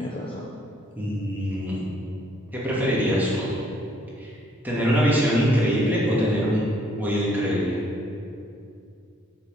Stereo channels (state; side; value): normal; both; correlation 0.66